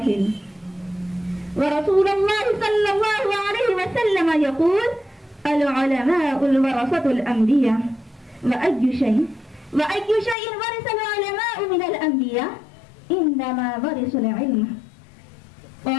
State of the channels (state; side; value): drops out; right; at 10.4 s